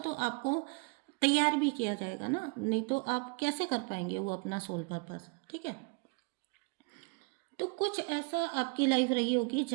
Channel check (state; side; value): quieter; left; 32.4 dB